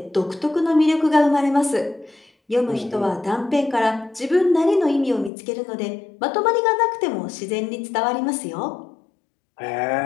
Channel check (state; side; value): drops out; right; at 5.3 s